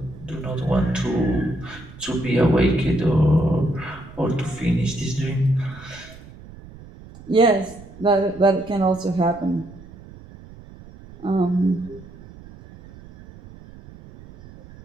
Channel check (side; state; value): right; noise; rumble, 19 dB below the sound